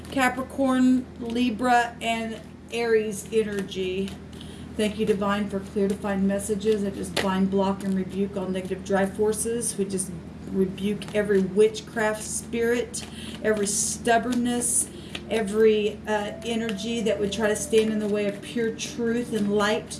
Capricorn, Libra, and Aries energy. Thank you, Divine, for clear defined messages. I just bind, block, and rebuke all negative drive forces. We just rebuke every witchcraft spirit, every stubbornness, every energy that would try to stand in the way of pure truth and light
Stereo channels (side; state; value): both; identical; correlation 1.00